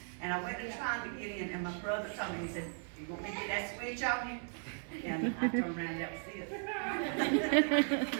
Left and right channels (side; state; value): left; silent; 53 dB below the other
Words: And I went and trying to get in, and my brother told me, he said, you want me to get that switch on you? And I turned around, that was it. You